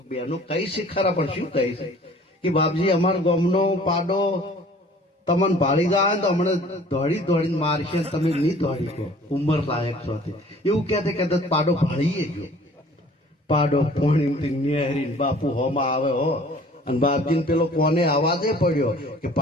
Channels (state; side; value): normal; both; correlation 0.51